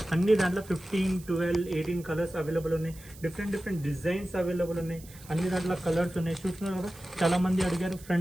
అన్ని దాంట్లో 15 12 18 కలర్స్ అవైలబుల్ ఉన్నాయి. డిఫరెంట్ డిజైన్స్ అవైలబుల్ ఉన్నాయి. అన్ని దాంట్లో కలర్స్ ఉన్నాయి. చూస్తున్నారు కదా, చాలా మంది అడిగారు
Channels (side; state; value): right; noise; hiss, 20 dB below the sound